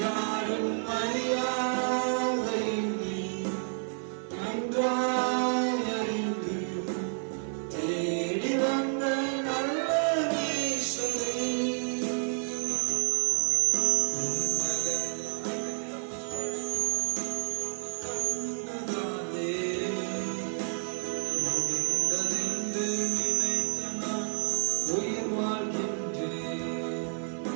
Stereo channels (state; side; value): silent; left; 58 dB below the other